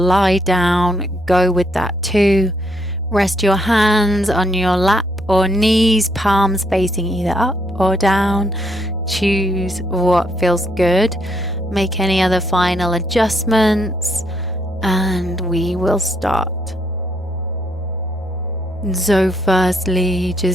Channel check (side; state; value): both; normal; correlation 0.74